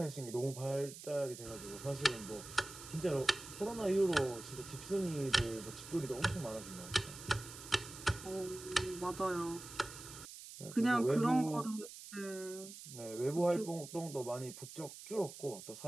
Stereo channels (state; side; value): noise; right; hiss, 13 dB below the sound